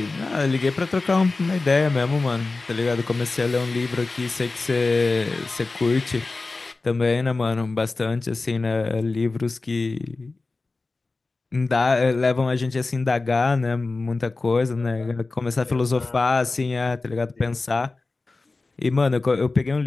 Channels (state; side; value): quieter; right; 3.6 dB